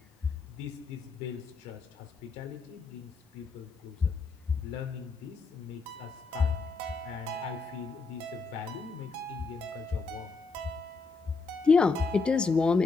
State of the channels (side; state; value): right; quieter; 4.2 dB